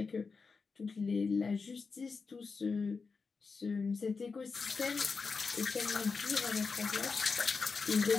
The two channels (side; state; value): right; quieter; 4.8 dB